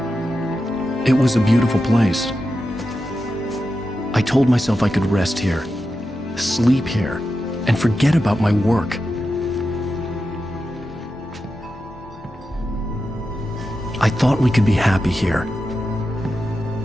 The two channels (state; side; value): normal; both; correlation 0.90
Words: It was a beautiful place. I told myself I could rest here, sleep here, and forget about my work. I thought we could be happy here.